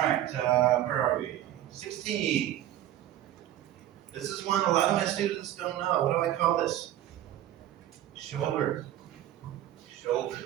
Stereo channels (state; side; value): quieter; left; 12.6 dB